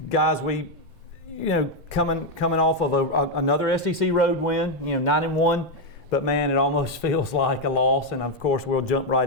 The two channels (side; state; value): both; normal; correlation 0.03